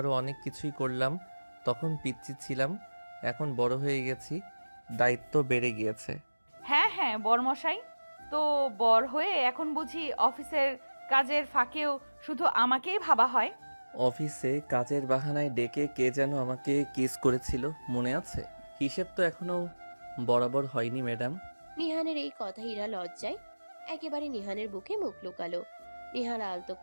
অনেক কিছুই করলাম, তখন পিচ্ছি ছিলাম। এখন বড় হয়ে গেছি, দায়িত্ব বেড়ে গিয়েছে। হ্যাঁ হ্যাঁ বরমশাই, তো বর হয়ে এখন বুঝি অফিসের কাজের ফাঁকেও শুধু আমাকেই ভাবা হয়? অফিসে কাজের বাহানায় ডেকে কে যেন আমাকে কিস করেছিল, মনে আছে? হিসেব তো এখনো বরাবর হয়নি ম্যাডাম। নিহানের এই কথা ইরা লজ্জায় একেবারে নিহানের বুকে মুখ লুকালো। নিহান আলতো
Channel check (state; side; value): inverted; both; correlation -1.00